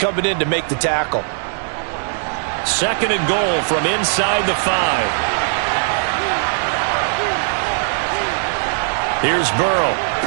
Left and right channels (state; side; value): silent; left; digital silence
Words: in to make the tackle. 2nd and goal from inside the 5. Here's Burrow.